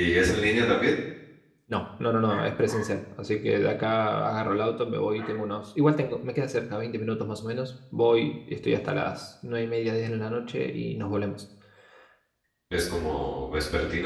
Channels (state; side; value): identical; both; correlation 1.00